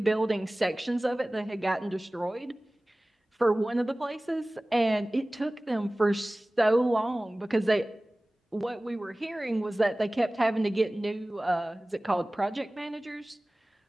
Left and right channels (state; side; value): normal; both; correlation 0.98